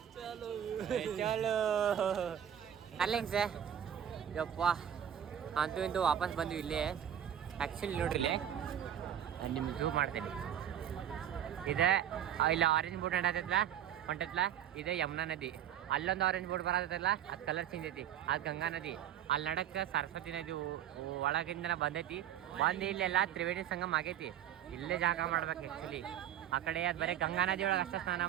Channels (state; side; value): quieter; left; 10.1 dB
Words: ಚಲೋ ಅಲ್ಲಿಂಗ್ ಸರ್. ಯಪ್ಪ ಅಂತೂ ಇಂತೂ ವಾಪಸ್ ಬಂದ್ವಿ ಇಲ್ಲೇ. ಆ್ಯಕ್ಚುಲಿ ನೋಡ್ರಿ ಇಲ್ಲೇ ನಿಮ್ಗೆ ಝೂಮ್ ಮಾಡ್ತೀನಿ. ಇದೆ ಇಲ್ಲ ಆರೆಂಜ್ ಬೋಟ್ ಹೊಂಟೈತ್ಲ ಇದೆ ಯಮುನಾ ನದಿ. ಅಲ್ಲೊಂದು ಆರೆಂಜ್ ಬೋಟ್ ಬರತ್ತಲ್ಲ, ಅದು ಕಲರ್ ಚೇಂಜ್ ಐತಿ. ಅದು ಗಂಗಾ ನದಿ. ಅಲ್ಲಿ ನಡಕ್ಕೆ ಸರಸ್ವತಿ ನದಿ ಒಳಗಿಂದ ಬಂದೈತಿ. ಬಂದು ಇಲ್ಲೆಲ್ಲ ತ್ರಿವೇಣಿ ಸಂಗಮ ಆಗೈತಿ. ಇಲ್ಲೇ ಜಾಗ ಮಾಡ್ಬೇಕು ಆ್ಯಕ್ಚುಲಿ. ಆ ಕಡೆ ಅದು ಬರೀ ಗಂಗಾ ನದಿ ಒಳಗೆ ಅಷ್ಟೇ ಸ್ನಾನ